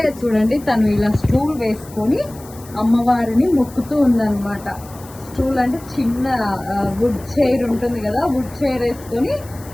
చూడండి, తను ఇలా స్టూల్ వేసుకొని అమ్మవారిని మొక్కుతూ ఉందన్నమాట. స్టూల్ అంటే చిన్న వుడ్ చైర్ ఉంటుంది కదా, వుడ్ చైర్ వేసుకొని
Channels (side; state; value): left; noise; hiss, 21 dB below the sound